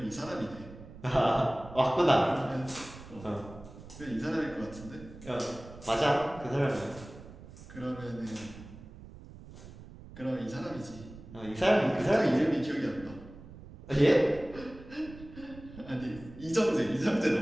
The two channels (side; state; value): right; noise; rumble, 17 dB below the sound